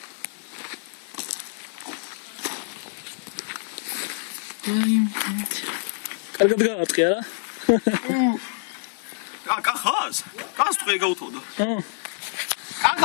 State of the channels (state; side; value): silent; right; 61 dB below the other